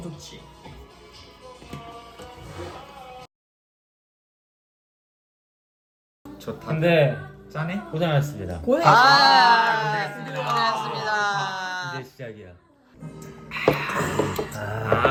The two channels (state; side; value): identical; both; correlation 1.00